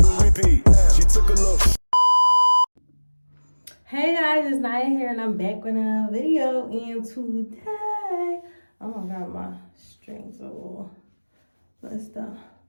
repeat. She took a look. Hey guys, it's Naya here and I'm back with another video. And today, oh my god, my strings are a little messed up.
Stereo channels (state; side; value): inverted; both; correlation -1.00